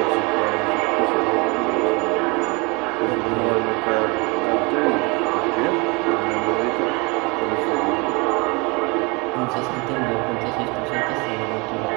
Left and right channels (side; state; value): left; quieter; 28.3 dB